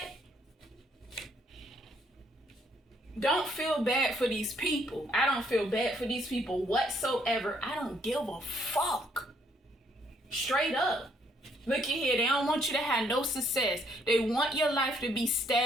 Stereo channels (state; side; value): normal; both; correlation 0.68